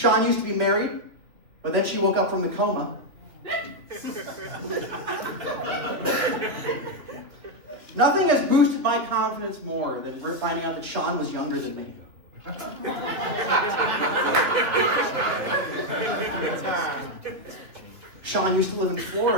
used to be married, but then she woke up from the coma. Nothing has boosted my confidence more than finding out that Sean was younger than me. Sean used to live in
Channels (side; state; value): left; late; 3.1 ms